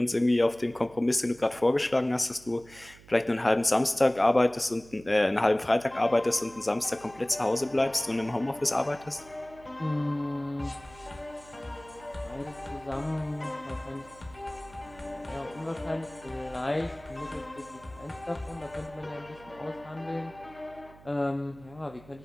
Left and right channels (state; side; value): noise; right; hum, 22 dB below the sound